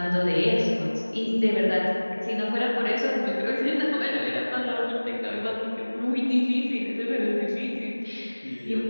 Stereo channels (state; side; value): inverted; both; correlation -1.00